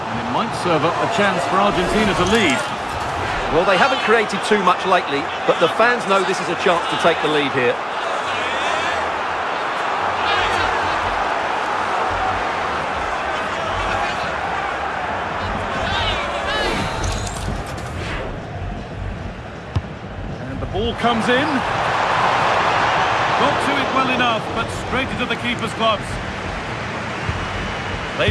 it might serve up a chance for Argentina to lead. Well, they haven't created too much lately, but the fans know this is a chance to take the lead here. Ball comes in. Got to it well enough, but straight into the keeper's gloves.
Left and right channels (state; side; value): identical; both; correlation 1.00